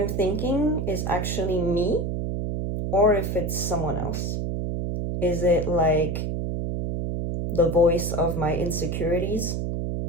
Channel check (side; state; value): right; noise; hum, 2 dB below the sound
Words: thinking is actually me or if it's someone else. Is it like the voice of my insecurities?